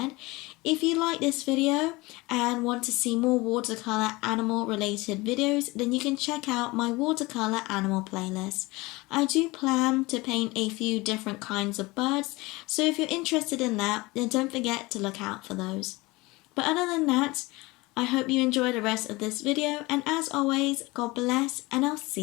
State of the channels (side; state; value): right; quieter; 22.5 dB